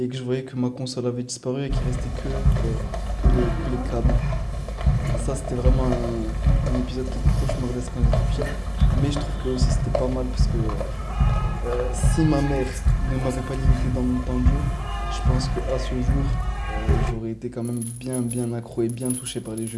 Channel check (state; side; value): identical; both; correlation 1.00